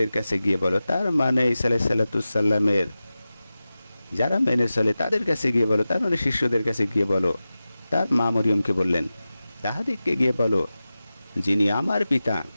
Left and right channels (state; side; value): inverted; both; correlation -0.95